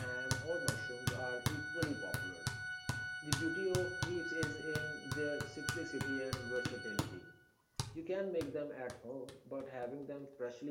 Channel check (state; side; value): identical; both; correlation 1.00